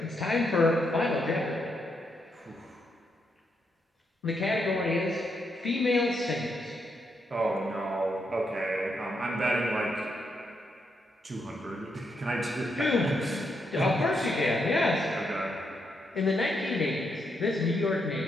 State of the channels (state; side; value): normal; both; correlation 0.80